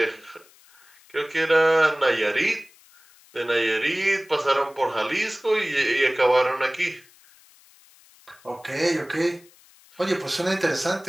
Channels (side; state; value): left; noise; hiss, 27 dB below the sound